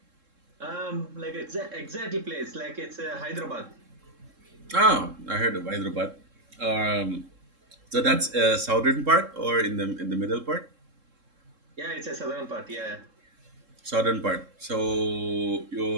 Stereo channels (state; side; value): late; left; 3.7 ms